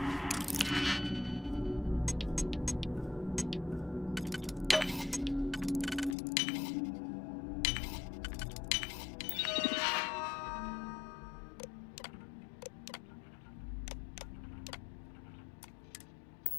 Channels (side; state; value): right; drops out; at 6.2 s